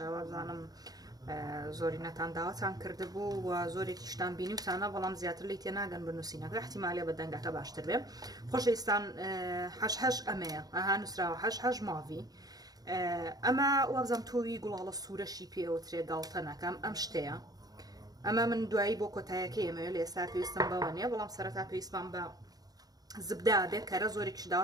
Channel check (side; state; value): left; late; 0.18 ms